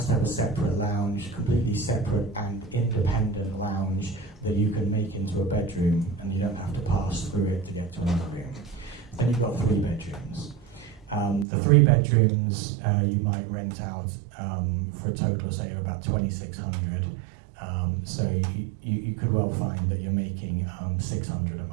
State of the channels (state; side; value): drops out; left; at 11.5 s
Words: to have a separate lounge, completely separate and independent lounge that you can make into a bedroom, and you don't have to pass through it to get to another room. Then you've got 3 bedrooms. The 3 bedrooms you might rent out for a total, say, of about $2,600. So you could well find that you're making $600 a